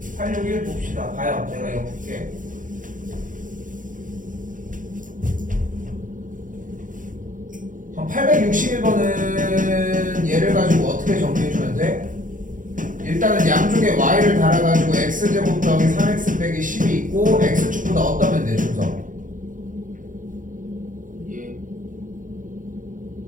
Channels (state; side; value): late; left; 0.38 ms